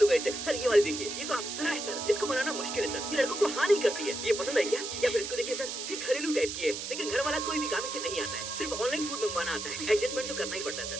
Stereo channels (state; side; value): noise; right; hiss, 6 dB below the sound